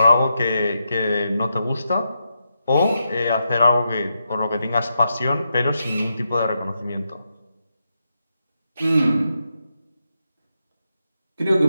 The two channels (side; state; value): both; inverted; correlation -0.85